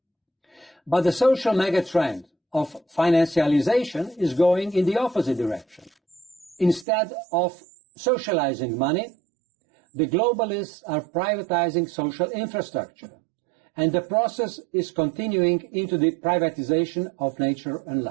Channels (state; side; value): drops out; left; at 6.9 s